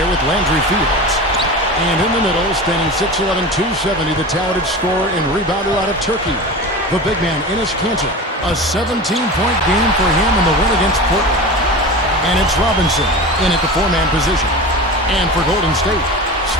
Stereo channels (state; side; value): normal; both; correlation 0.30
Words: with Landry Fields. And in the middle, standing 6'11", 270, the talented scorer and rebounder out of Turkey, the big man, Enes Kanter. A 17-point game for him in the win against Portland. And it's Robinson in at the four-man position. And for Golden State,